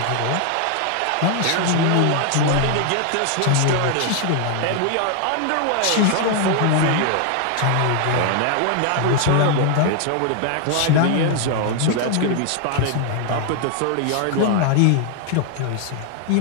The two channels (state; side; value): different; both; correlation 0.00